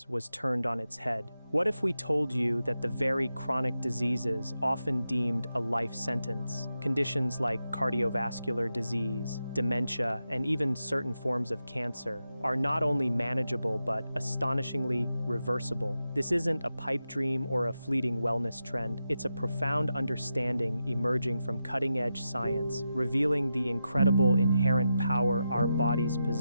was turned on its head. What if we told you that the very chronic diseases often deemed a life sentence, conditions like cardiovascular disease, dementia, and even certain forms of cancer, are not only manageable but astonishingly reversible? This isn't a pipe dream or a fleeting wellness trend. It's a profound understanding emerging from cutting-edge science, revealing the incredible inherent power our bodies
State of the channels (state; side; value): inverted; both; correlation -0.88